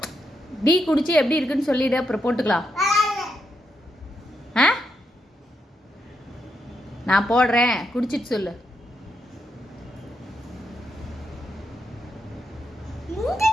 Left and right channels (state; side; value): normal; both; correlation 0.82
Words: டீ குடிச்சு எப்படி இருக்குன்னு சொல்லிடு, அப்புறம் போட்டுக்கலாம். நான் போடுறேன், குடிச்சிட்டு சொல்லு.